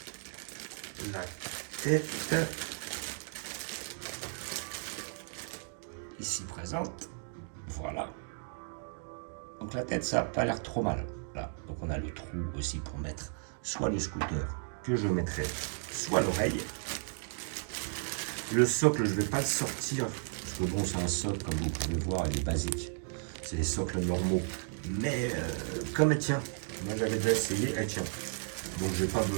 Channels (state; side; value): silent; left; 55 dB below the other